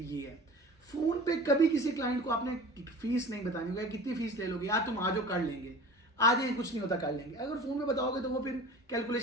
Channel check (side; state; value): both; normal; correlation 0.39